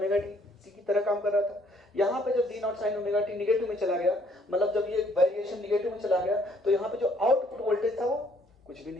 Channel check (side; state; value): both; normal; correlation 0.64